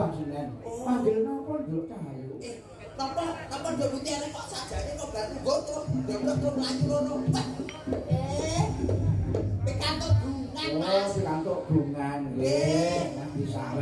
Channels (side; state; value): both; identical; correlation 1.00